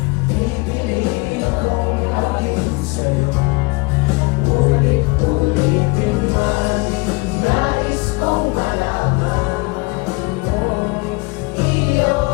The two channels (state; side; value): quieter; right; 26.1 dB